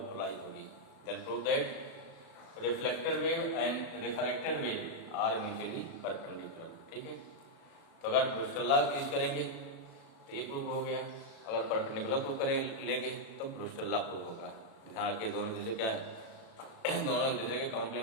पोलराइज होगी। Then prove that reflected wave and refracted wave are mutually perpendicular. ठीक है, तो अगर ब्रूस्टर लॉ यूज करेंगे तो ये प्रूव हो गया, अगर परपेंडिकुलर प्रूव करें लेंगे तो ब्रूस्टर लॉ प्रूव होगा। ध्यान रखिए दोनों दूसरे क्या है दोनों एक दूसरे के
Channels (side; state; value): right; late; 36 ms